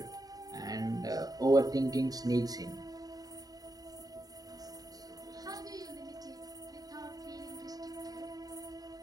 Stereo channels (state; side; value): late; left; 0.18 ms